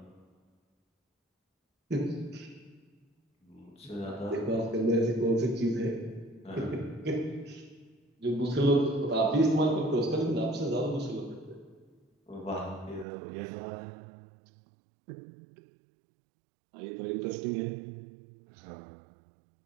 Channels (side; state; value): left; drops out; at 13.1 s